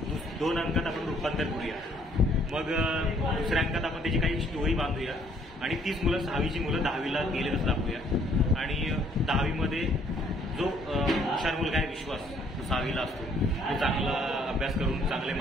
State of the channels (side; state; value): both; normal; correlation 0.63